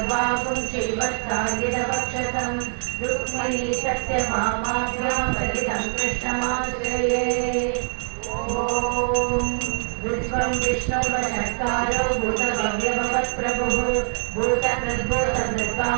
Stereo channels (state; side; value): silent; left; digital silence